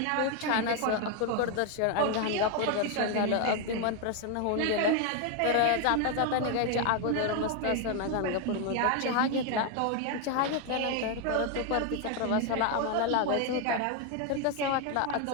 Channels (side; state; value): both; different; correlation 0.01